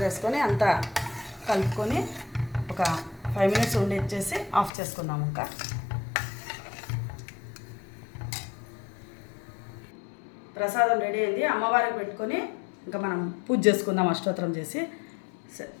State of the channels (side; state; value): right; drops out; at 4.7 s